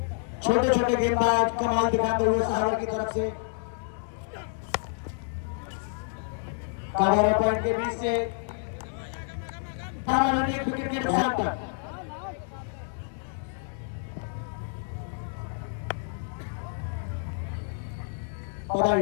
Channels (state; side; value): silent; right; digital silence